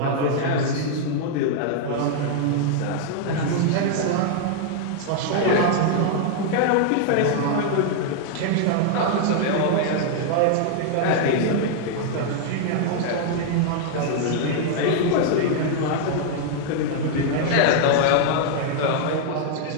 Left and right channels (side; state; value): both; different; correlation 0.00